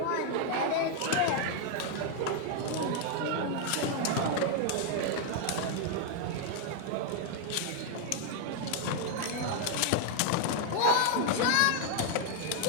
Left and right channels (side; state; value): both; different; correlation 0.01